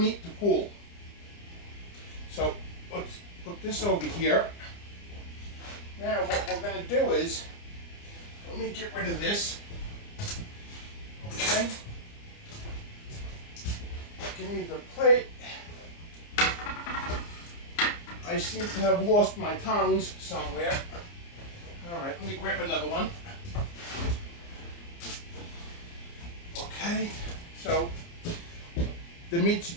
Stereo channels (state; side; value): late; right; 29 ms